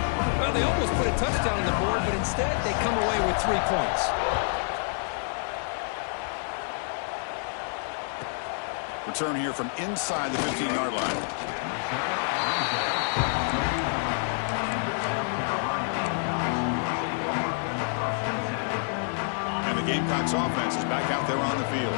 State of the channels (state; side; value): silent; right; 60 dB below the other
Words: Well, they almost put a touchdown on the board, but instead they come away with 3 points. Return here from inside the 15-yard line. And the Gamecocks offense is back out there on the field.